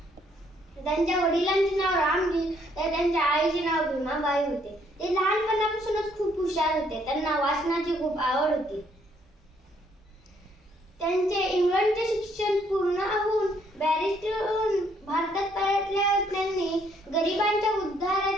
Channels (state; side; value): normal; both; correlation 0.68